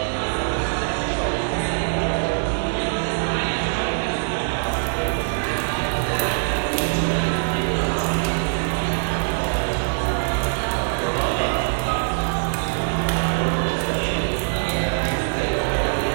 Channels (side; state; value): left; silent; digital silence